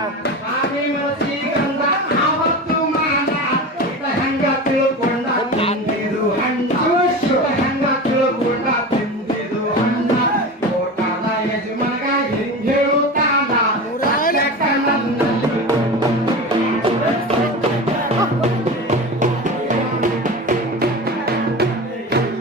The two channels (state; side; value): normal; both; correlation 0.29